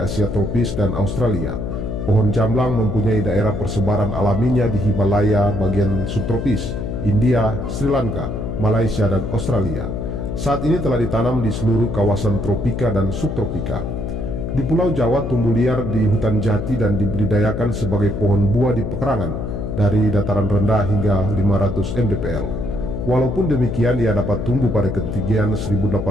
tropis dan Australia. Pohon jamblang mempunyai daerah persebaran alaminya di Himalaya bagian subtropis, India, Sri Lanka, Malaysia, dan Australia. Saat ini telah ditanam di seluruh kawasan tropika dan subtropika. Di Pulau Jawa tumbuh liar di hutan jati dan dibudidayakan sebagai pohon buah di pekarangan dari dataran rendah hingga 500 mdpl. Walaupun demikian, ia dapat tumbuh pada ketinggian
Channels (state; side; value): noise; left; hum, 4 dB below the sound